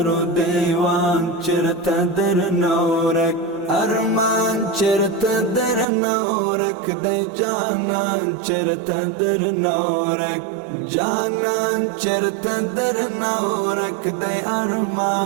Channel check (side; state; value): left; drops out; at 5.9 s